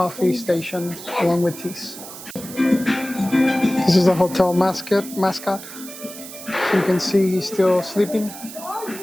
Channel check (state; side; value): noise; right; hiss, 13 dB below the sound